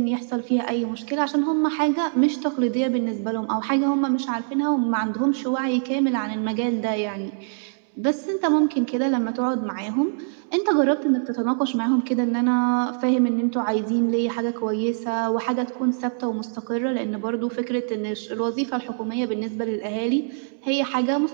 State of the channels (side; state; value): left; silent; digital silence